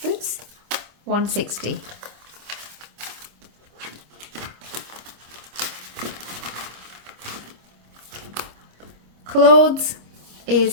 Oops, 160. Clothes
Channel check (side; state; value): left; late; 26 ms